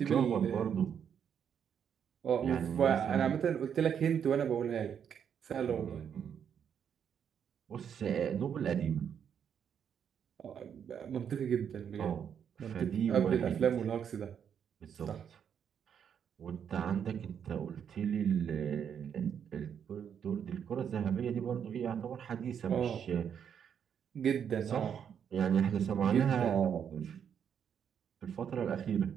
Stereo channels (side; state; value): left; quieter; 8.1 dB